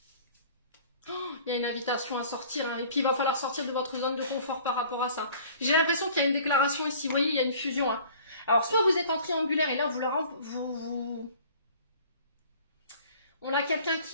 Il y a une invitation à sortir, hein, et puis il va falloir sortir de votre zone de confort par rapport à ça. J'ai l'impression qu'il y a une déclaration ici, vous voyez, il y a une fusion. Hein. Alors, soit vous êtes en triangulaire, et là, on a quelqu'un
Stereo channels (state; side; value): inverted; both; correlation -0.49